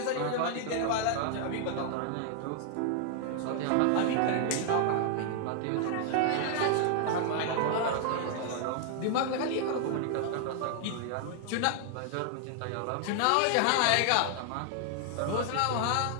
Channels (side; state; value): both; different; correlation 0.00